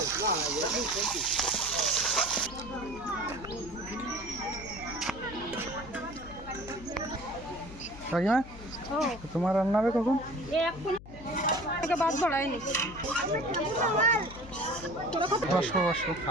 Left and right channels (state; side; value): noise; left; hum, 16 dB below the sound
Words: কাকিমা, তোমার রান্না হবে কখন? বসো বসো।